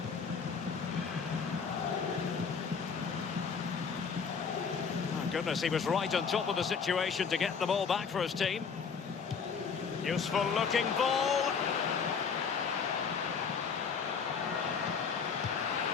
Oh, goodness, he was right on top of the situation to get the ball back for his team. Useful looking ball.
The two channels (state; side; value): quieter; right; 6.0 dB